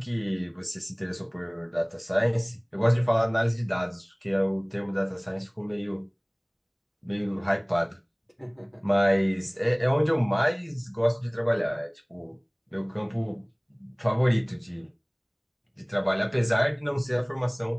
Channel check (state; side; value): identical; both; correlation 1.00